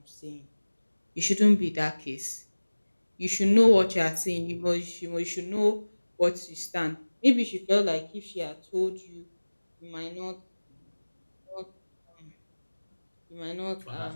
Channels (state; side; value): inverted; both; correlation -1.00